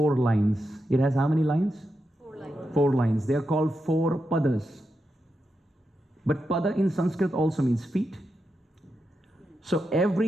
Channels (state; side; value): normal; both; correlation 0.87